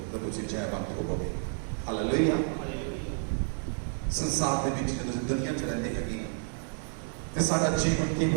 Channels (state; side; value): silent; left; 58 dB below the other